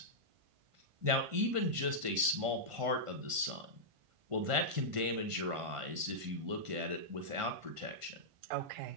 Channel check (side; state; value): left; late; 1.5 ms